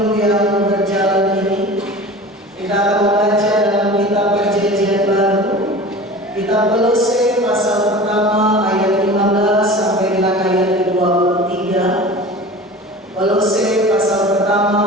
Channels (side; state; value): both; normal; correlation 0.37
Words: yang berjalan ini, kita akan membaca dalam kitab Perjanjian Baru, kitab Kolose pasal pertama ayat 15 sampai dengan ayat ke-23. Kolose pasal